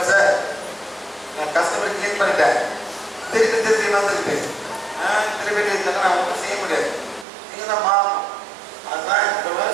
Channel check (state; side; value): drops out; left; at 7.2 s